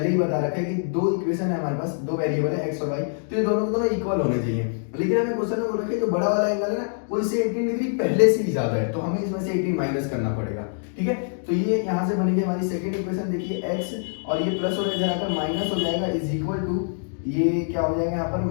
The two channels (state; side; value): silent; right; digital silence